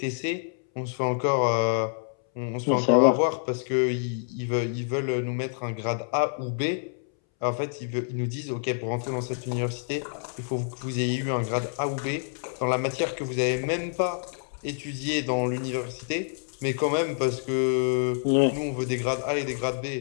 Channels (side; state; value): right; silent; 60 dB below the other